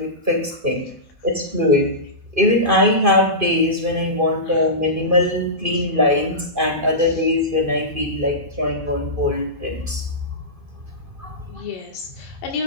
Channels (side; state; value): left; late; 2.5 ms